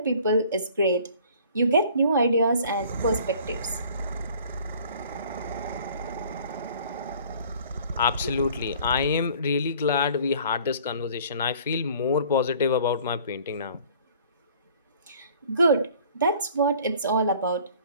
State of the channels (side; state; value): both; inverted; correlation -0.52